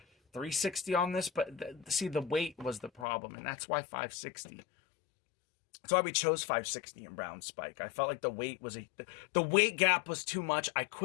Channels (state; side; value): drops out; right; at 3.1 s